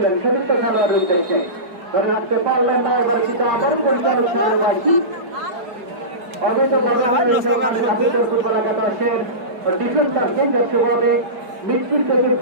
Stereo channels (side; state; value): left; late; 4.7 ms